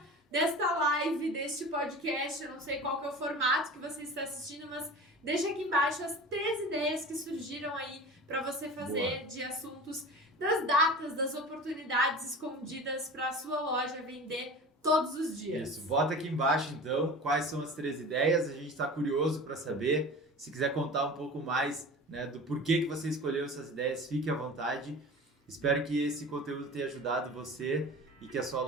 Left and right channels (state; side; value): normal; both; correlation 0.35